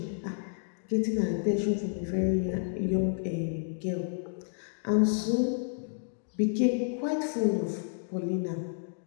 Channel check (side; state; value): right; silent; digital silence